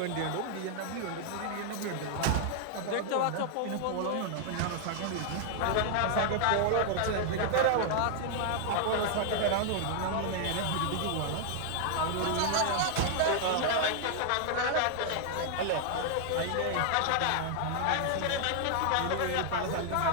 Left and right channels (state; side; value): different; both; correlation 0.00